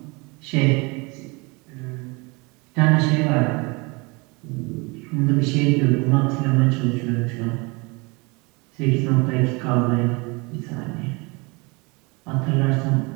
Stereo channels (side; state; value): left; quieter; 27.8 dB